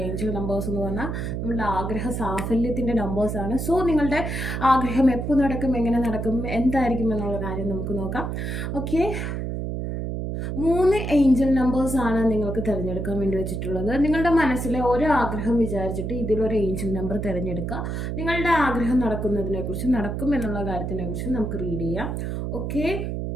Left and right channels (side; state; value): right; noise; hum, 3 dB below the sound